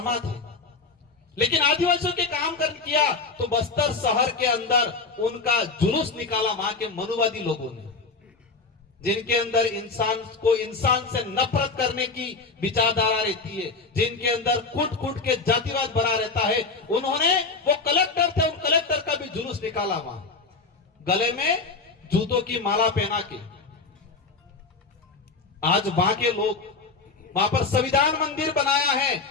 थे, लेकिन आदिवासियों के काम कर किया तो बस्तर शहर के अंदर उनका जुलूस निकाला वहां के मनुवादी लोगों ने, जिनके अंदर इंसान से नफरत करने की विचारधारा रहती है, जिनके अंदर कूट कूट के जातिवाद भरा रहता है। उन्होंने, वो कलेक्टर थे, उन कलेक्टर का भी जुलूस निकाला वहां, गले में जूतों की माला पहना के। आज वहां के लोग वहां पर संविधान मंदिर बनाया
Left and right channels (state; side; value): quieter; right; 4.1 dB